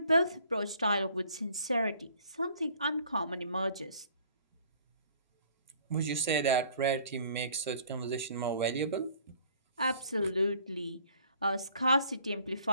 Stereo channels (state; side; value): inverted; both; correlation -0.57